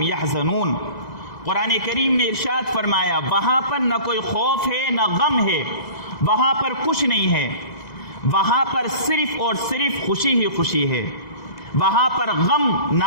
یحزنون۔ قرآن کریم نے ارشاد فرمایا وہاں پر نہ کوئی خوف ہے نہ غم ہے، وہاں پر کچھ نہیں ہے، وہاں پر صرف اور صرف خوشی ہی خوشی ہے، وہاں پر غم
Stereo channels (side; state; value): right; late; 1.9 ms